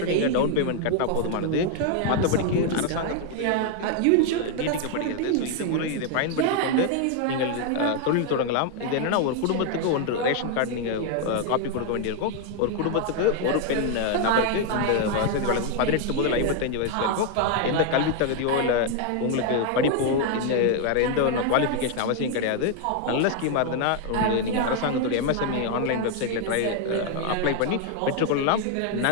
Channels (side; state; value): both; different; correlation 0.00